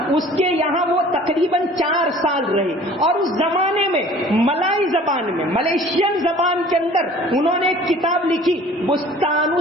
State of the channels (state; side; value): normal; both; correlation 0.49